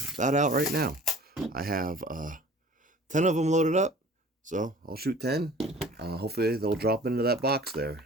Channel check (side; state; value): both; normal; correlation 0.47